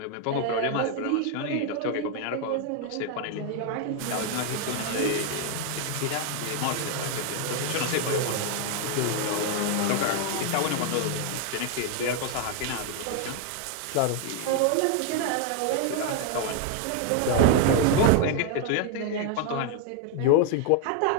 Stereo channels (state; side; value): different; both; correlation 0.00